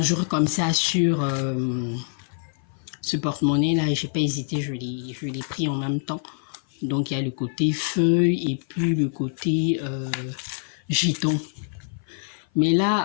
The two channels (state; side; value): silent; right; 56 dB below the other